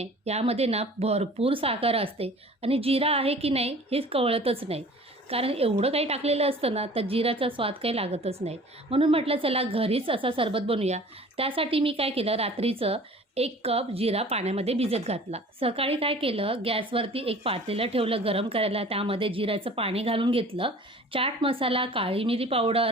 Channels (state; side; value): normal; both; correlation 0.46